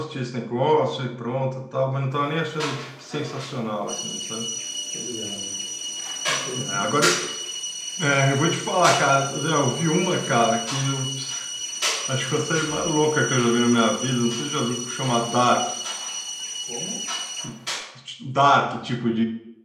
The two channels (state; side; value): identical; both; correlation 1.00